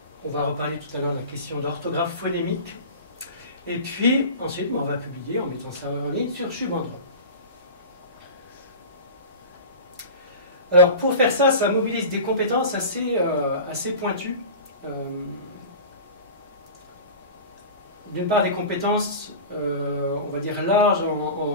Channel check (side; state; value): both; inverted; correlation -0.33